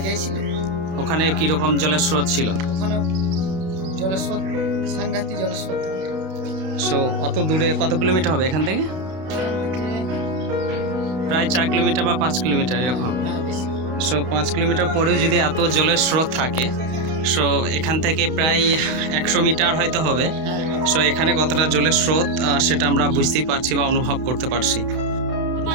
গিয়েছিল। ওখানে কীরকম জলের স্রোত ছিল? ওখানে জলের স্রোত, সাংঘাতিক জলের স্রোত। সো অত দূরে, কত কিলোমিটার হবে এখান থেকে? প্রায় 4 কিলোমিটার বা 5 কিলোমিটার এরকম। হ্যাঁ বেশি। সো 5 কিলোমিটার পরেও যদি এত জলের স্রোত থাকে, সো এখান থেকে প্রায় 100 মিটার হয়তো হবে। সো এখানে কতটা জলের স্রোত সেটা আমরা বুঝতেই পারছি বা অনুভব করতে পারছি।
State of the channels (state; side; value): late; left; 32 ms